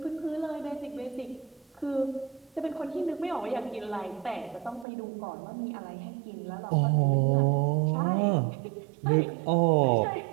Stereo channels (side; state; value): left; drops out; at 4.9 s